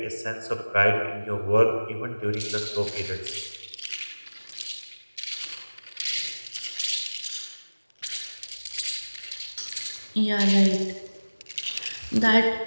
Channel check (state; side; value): inverted; both; correlation -1.00